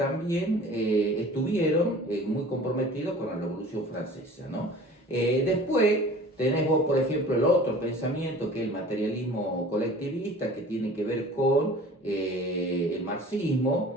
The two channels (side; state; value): both; normal; correlation 0.44